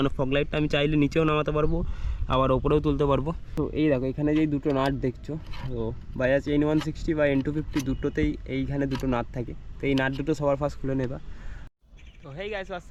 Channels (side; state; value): both; identical; correlation 1.00